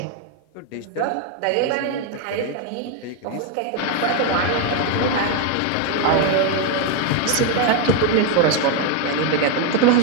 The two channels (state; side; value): different; both; correlation 0.01